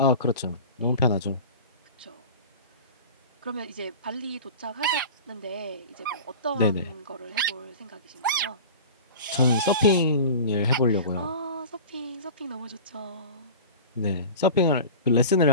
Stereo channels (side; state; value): both; inverted; correlation -0.36